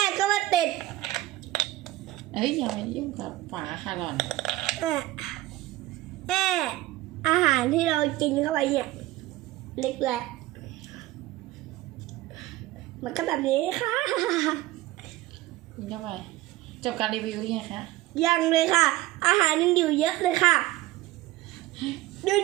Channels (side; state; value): left; quieter; 16.7 dB